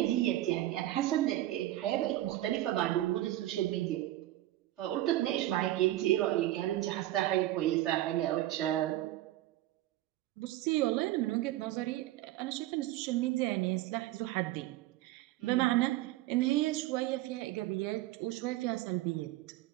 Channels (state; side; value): quieter; left; 15.4 dB